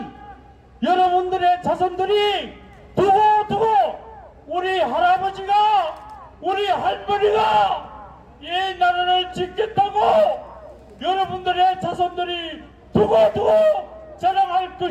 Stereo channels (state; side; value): identical; both; correlation 1.00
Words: 여러분들의 자손들이 두고두고 우리 할아버지가 우리 할머니가 이 나라를 지켰다고 여러분들의 자손들이 두고두고 자랑할